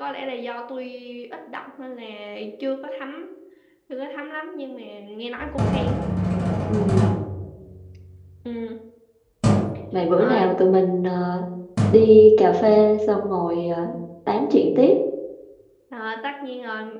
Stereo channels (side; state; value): both; identical; correlation 1.00